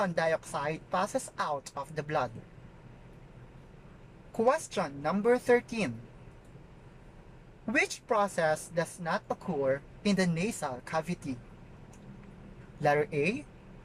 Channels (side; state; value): both; identical; correlation 1.00